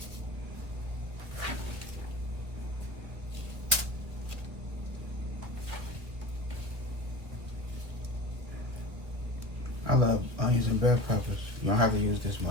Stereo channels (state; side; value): late; left; 1.7 ms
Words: I love onions and bell peppers. You don't have to use this